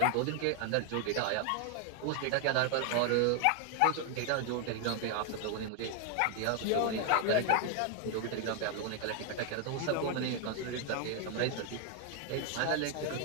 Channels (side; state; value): both; different; correlation 0.00